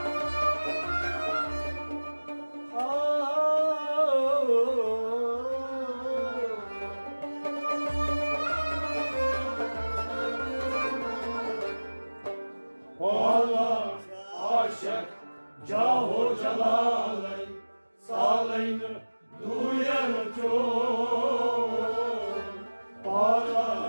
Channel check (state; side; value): inverted; both; correlation -1.00